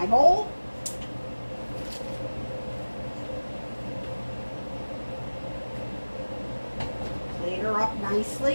bowl. Plate her up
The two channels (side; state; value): both; inverted; correlation -1.00